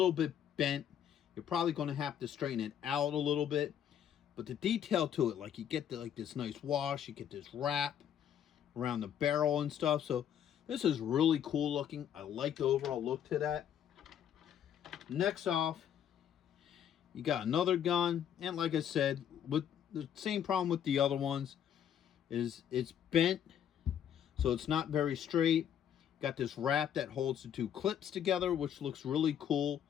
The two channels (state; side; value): quieter; right; 9.4 dB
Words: bit bent. You're probably going to have to straighten it out a little bit. But the detail to it, like you get like this nice wash, you get this wrap around the barrel and stuff. So this is really cool looking. I like the overall look to that. Next off, you got another gun. And like I said, with the same problem with the other ones is it's bent. So it's not very straight. Got this wrap that holds the 2 clips together, which looks really cool.